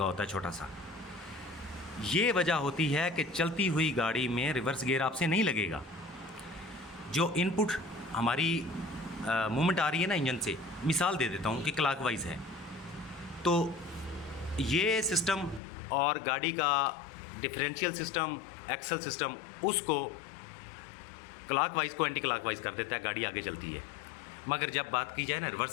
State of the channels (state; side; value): drops out; right; at 15.6 s